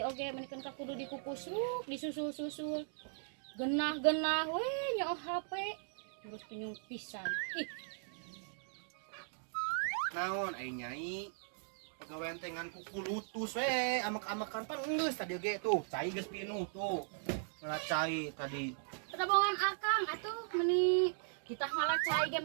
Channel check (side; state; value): left; silent; digital silence